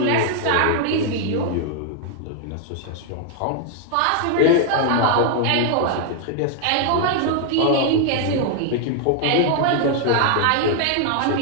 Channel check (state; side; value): different; both; correlation 0.00